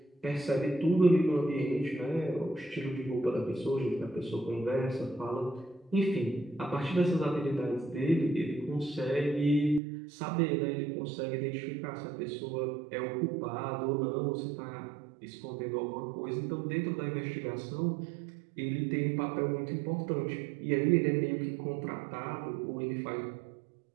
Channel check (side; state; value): left; drops out; at 9.8 s